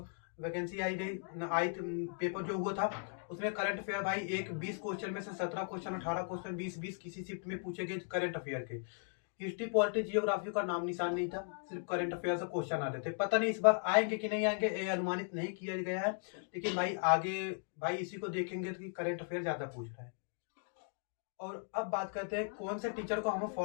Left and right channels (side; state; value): right; silent; 53 dB below the other